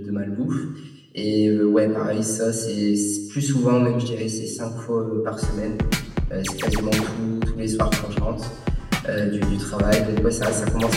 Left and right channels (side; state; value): both; identical; correlation 1.00